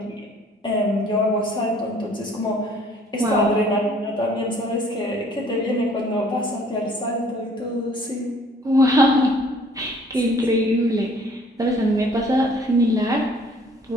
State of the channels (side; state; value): both; normal; correlation 0.57